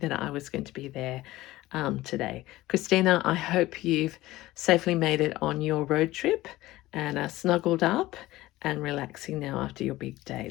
I was going to be there today. Christina, I hope you've safely made it on your road trip and are snuggled up and relaxing now after your big day.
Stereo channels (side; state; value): right; quieter; 17.3 dB